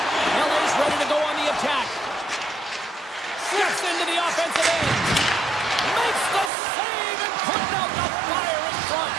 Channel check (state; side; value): drops out; left; at 6.5 s